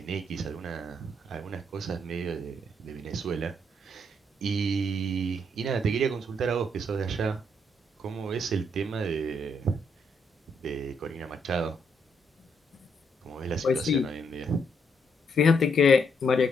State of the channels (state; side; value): normal; both; correlation 0.74